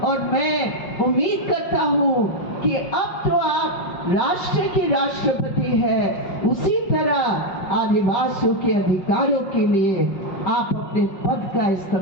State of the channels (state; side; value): late; right; 5.6 ms